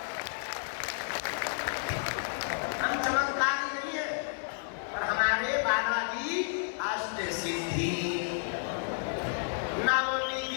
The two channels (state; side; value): silent; right; 57 dB below the other